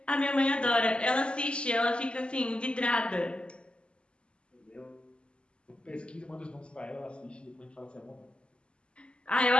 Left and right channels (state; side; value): late; right; 0.053 ms